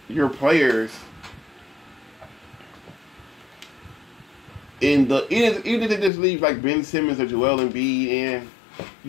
your players, even if they just leave like Ben Simmons or Joel Embiid in,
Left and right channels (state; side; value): drops out; right; at 6.1 s